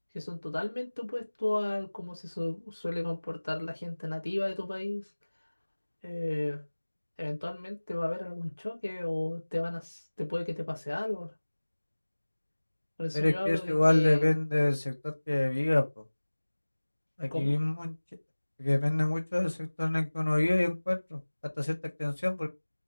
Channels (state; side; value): inverted; both; correlation -1.00